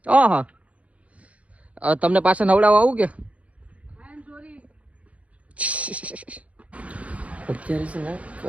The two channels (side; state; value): left; late; 0.065 ms